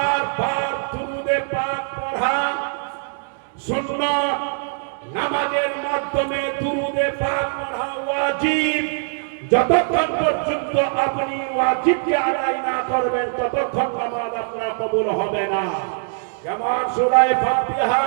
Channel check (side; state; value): left; silent; digital silence